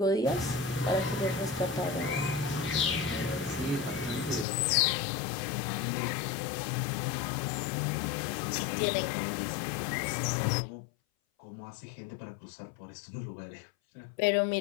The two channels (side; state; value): right; drops out; at 4.5 s